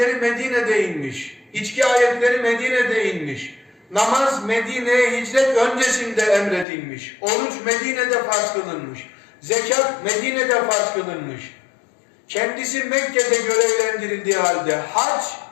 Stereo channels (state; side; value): drops out; right; at 6.7 s